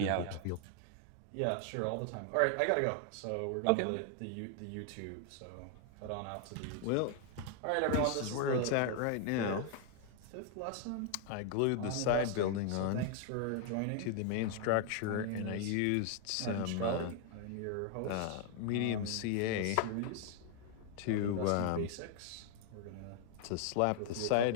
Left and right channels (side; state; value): both; different; correlation 0.00